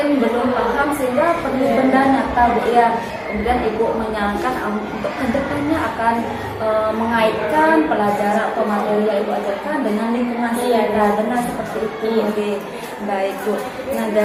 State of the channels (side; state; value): both; identical; correlation 1.00